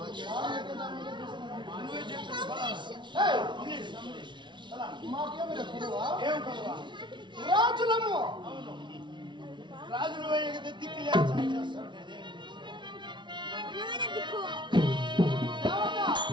రాజులము. రాజులు దిక్కు లేస్తాడు.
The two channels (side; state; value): left; late; 0.23 ms